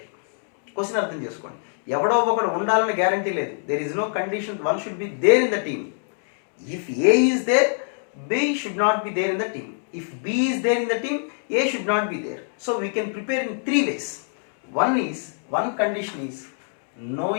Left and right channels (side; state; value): right; silent; digital silence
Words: Question అర్థం చేసుకోండి. ఎవడో ఒకడు ఉండాలని గ్యారంటీ లేదు. There is no condition one should be there in the team. If A is there, B should not be there in the team. If B is there in the team, A should not be there. So we can prepare in 3 ways. One condition is no